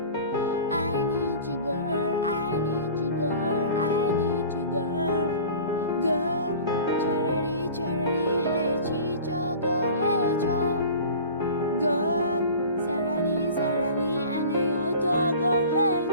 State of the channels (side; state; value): both; inverted; correlation -0.41